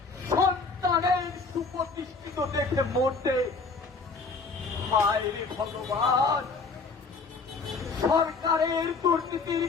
সন্তানের সুপ্রতিষ্ঠিত দেখে মরতে। হায় রে ভগবান, সরকারের দুর্নীতির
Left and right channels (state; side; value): quieter; right; 4.3 dB